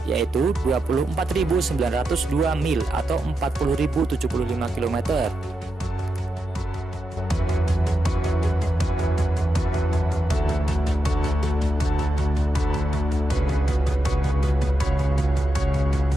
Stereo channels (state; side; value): normal; both; correlation 0.87